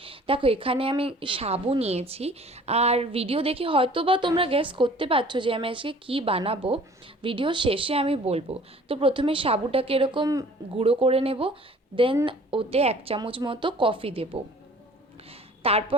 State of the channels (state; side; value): normal; both; correlation 0.50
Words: দেখো, এখানে আমি সাবু নিয়েছি। আর ভিডিও দেখে হয়তো বা তোমরা গেস করতে পারছো যে আমি আজকে কী বানাবো। ভিডিও শেষে আমি বলবো। তো প্রথমে সাবুটাকে এরকম গুঁড়ো করে নেব, দেন ওতে 1 চামচ মতো কফি দেবো।